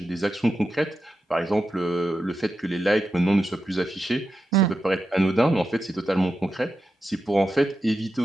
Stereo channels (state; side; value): normal; both; correlation 0.89